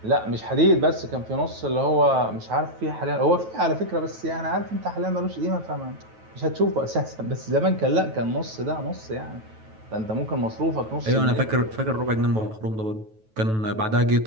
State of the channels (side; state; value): left; late; 9.2 ms